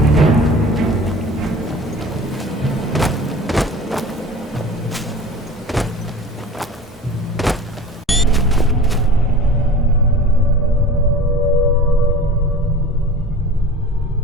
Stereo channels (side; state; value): both; normal; correlation 0.39